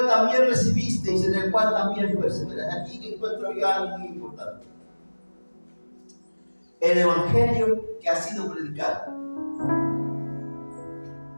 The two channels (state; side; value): inverted; both; correlation -1.00